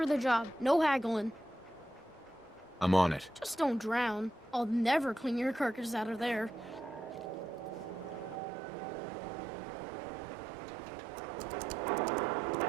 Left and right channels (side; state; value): left; drops out; at 8.4 s